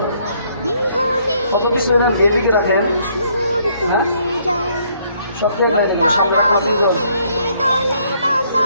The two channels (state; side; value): inverted; both; correlation -0.68